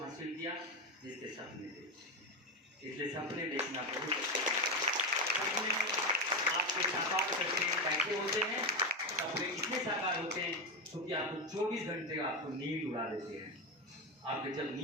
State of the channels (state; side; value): normal; both; correlation 0.14